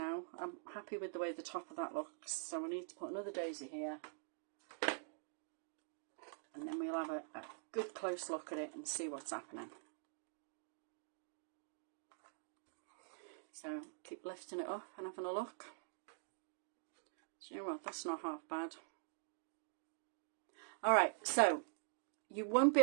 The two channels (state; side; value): silent; left; digital silence